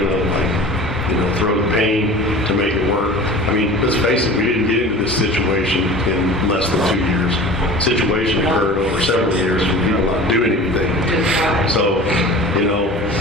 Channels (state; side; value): normal; both; correlation 0.39